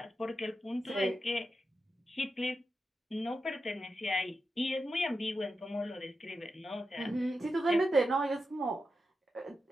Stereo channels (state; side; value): normal; both; correlation 0.89